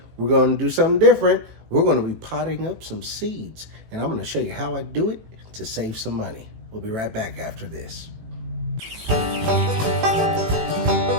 we're going to do something different. We're going to be potting up some seeds, and I'm going to show you how I do it to save some money. We'll be right back after this.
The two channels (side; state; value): left; late; 18 ms